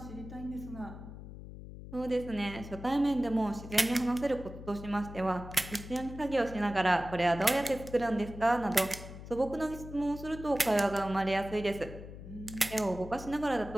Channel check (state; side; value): noise; left; hum, 13 dB below the sound